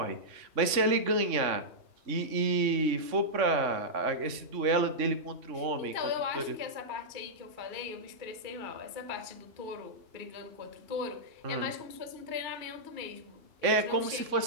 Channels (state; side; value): late; left; 3.5 ms